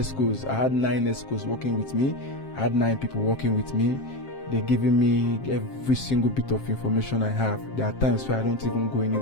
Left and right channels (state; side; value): late; right; 7.5 ms